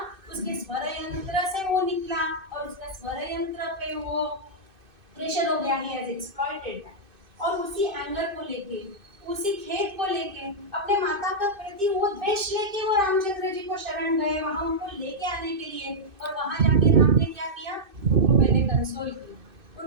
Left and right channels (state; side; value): late; left; 2.6 ms